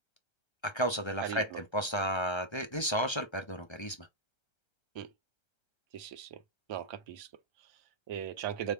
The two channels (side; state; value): right; late; 1.3 ms